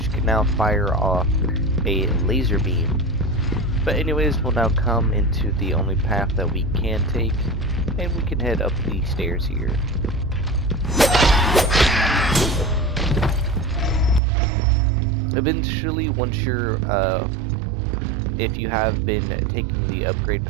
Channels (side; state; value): left; drops out; at 14.2 s